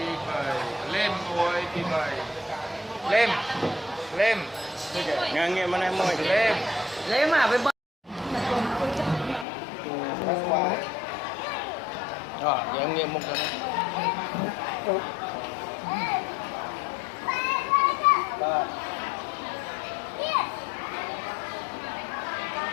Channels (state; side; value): drops out; right; at 9.5 s